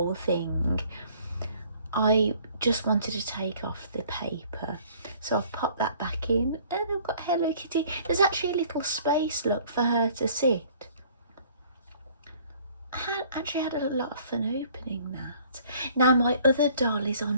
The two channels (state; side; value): inverted; both; correlation -0.56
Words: thing. I just wanted to take off the paper, so I've popped that back in, and I've got Hello Kitty. There's actually a little space, look, for her to sit. I actually had a lot of fun opening that. Now my other doll is on